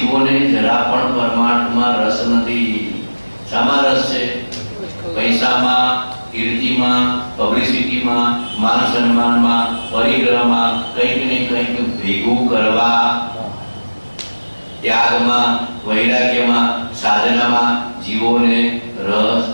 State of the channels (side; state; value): both; inverted; correlation -1.00